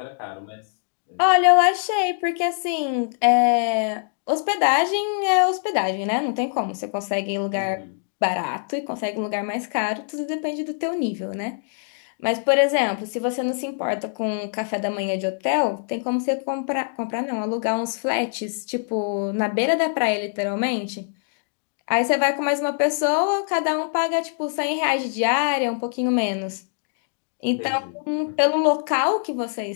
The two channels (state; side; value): silent; right; digital silence